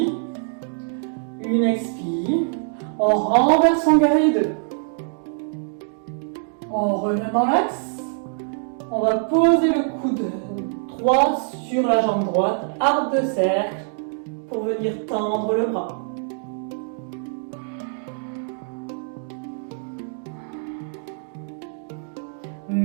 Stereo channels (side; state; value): left; silent; 63 dB below the other